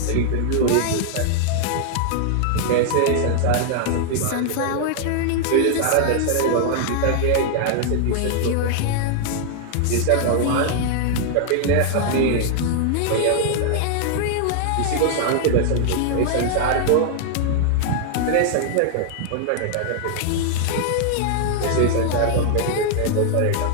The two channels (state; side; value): different; both; correlation -0.01